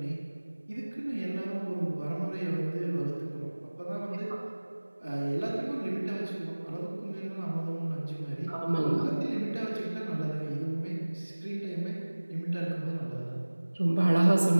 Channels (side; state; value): both; inverted; correlation -1.00